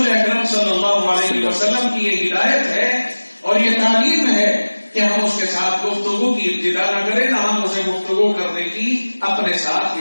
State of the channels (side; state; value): both; inverted; correlation -1.00